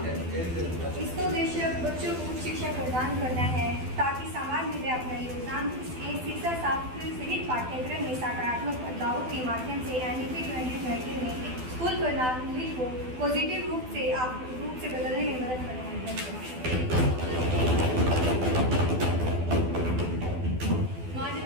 इसका उद्देश्य बच्चों को उच्च शिक्षा प्रदान करना है ताकि समाज में वे अपना योगदान शिक्षा शास्त्र सहित पाठ्यक्रम में सकारात्मक बदलावों के माध्यम से एनईपी 2020 में स्कूल प्रणाली को पॉजिटिव रूप से बदलने में मदद करना है।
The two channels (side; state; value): left; late; 12 ms